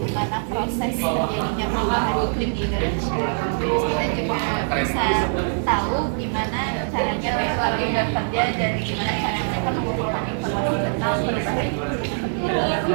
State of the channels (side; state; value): left; silent; 63 dB below the other